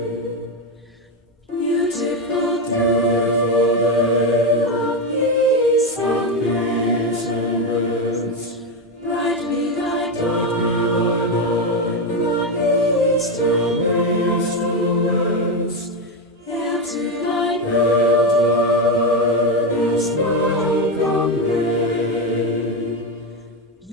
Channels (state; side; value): normal; both; correlation 0.11